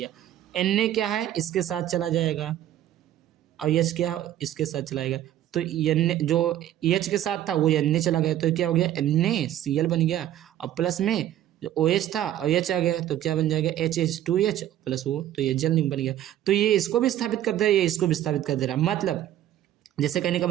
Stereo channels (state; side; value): quieter; left; 12.2 dB